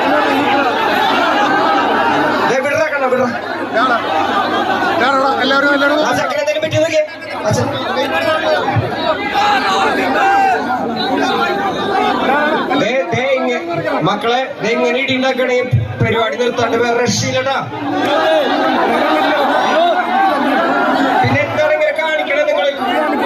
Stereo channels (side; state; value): both; identical; correlation 1.00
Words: ചെക്കനെന്തെങ്കിലും പറ്റി നോക്കിയേ. മക്കളെ എങ്ങനെ ഇടി ഉണ്ടാക്കണേ പരിപാടി നിർത്താണ്ട് വേറെ രക്ഷയില്ലട്ടാ. പിന്നെ എന്താണ് ഇങ്ങനെ കാണിക്കണേ നിങ്ങൾ?